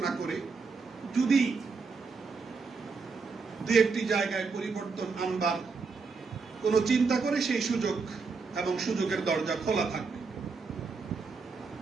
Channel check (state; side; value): quieter; left; 4.7 dB